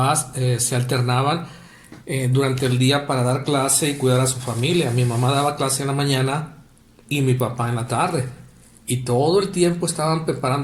se alternaban durante el día para dar clase y cuidar a su familia. Mi mamá daba clase en la mañana y mi papá en la tarde. Y todo el tiempo estaban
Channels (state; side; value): identical; both; correlation 1.00